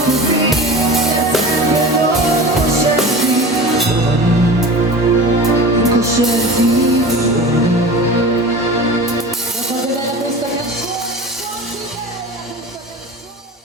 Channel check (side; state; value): both; normal; correlation 0.34